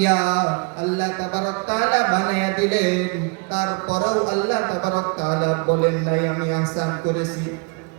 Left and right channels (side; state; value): left; quieter; 30.9 dB